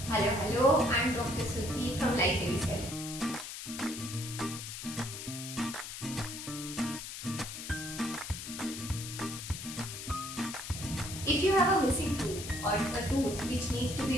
Hello, I'm Dr. Suti from Life Very Cell. If you have a missing tooth or a tooth which needs to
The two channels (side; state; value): left; noise; hiss, 8 dB below the sound